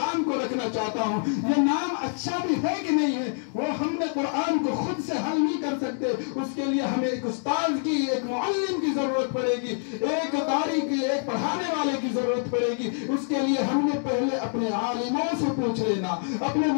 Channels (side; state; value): right; silent; digital silence